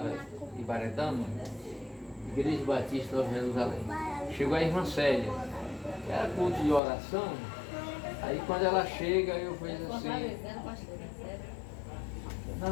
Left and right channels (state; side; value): drops out; right; at 6.8 s